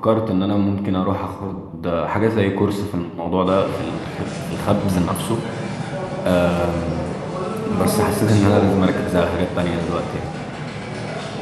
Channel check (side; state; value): both; identical; correlation 1.00